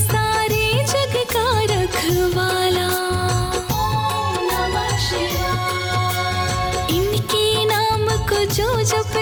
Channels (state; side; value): identical; both; correlation 1.00